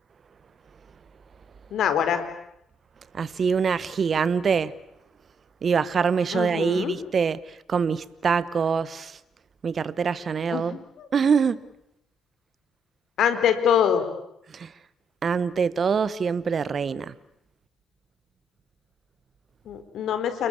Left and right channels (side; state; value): both; normal; correlation 0.73